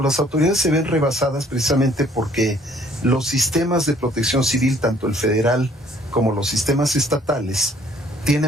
autoridades se ven rebasadas precisamente porque los sistemas de protección civil, tanto el federal como los sistemas estatales,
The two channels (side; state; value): both; normal; correlation 0.59